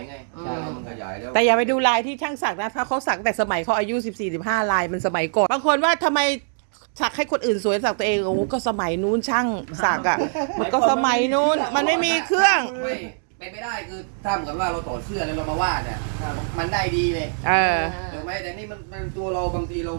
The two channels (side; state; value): left; silent; digital silence